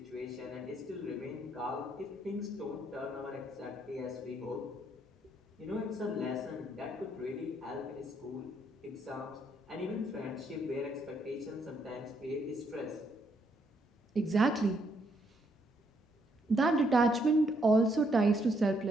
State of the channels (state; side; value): normal; both; correlation 0.73